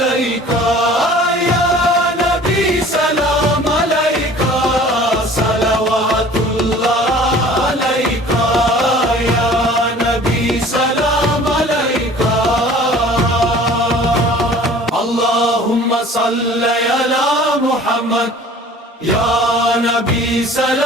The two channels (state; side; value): normal; both; correlation 0.47